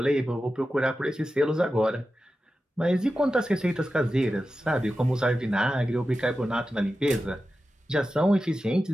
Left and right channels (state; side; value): normal; both; correlation 0.92